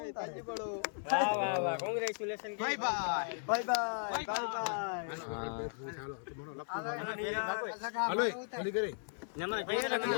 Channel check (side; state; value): right; silent; 53 dB below the other